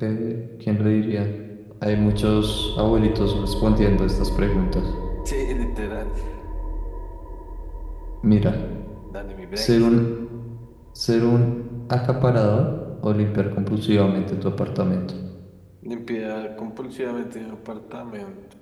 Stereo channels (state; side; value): identical; both; correlation 1.00